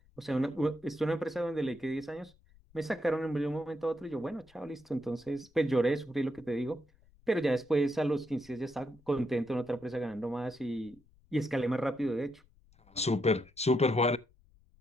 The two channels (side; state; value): left; noise; rumble, 30 dB below the sound